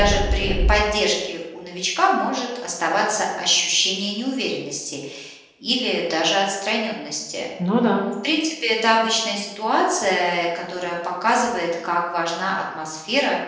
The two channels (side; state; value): both; identical; correlation 1.00